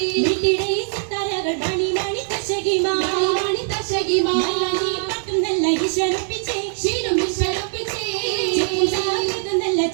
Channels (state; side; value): silent; left; 64 dB below the other